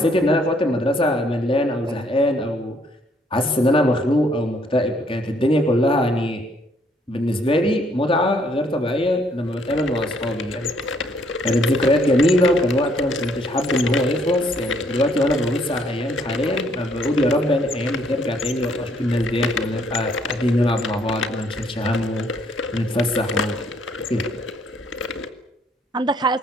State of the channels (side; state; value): both; normal; correlation 0.67